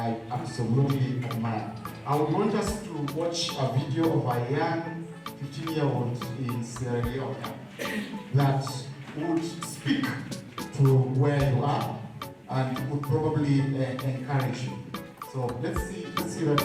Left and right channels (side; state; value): both; identical; correlation 1.00